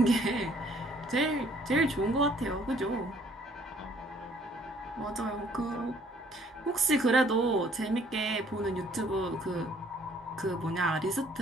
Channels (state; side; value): normal; both; correlation 0.61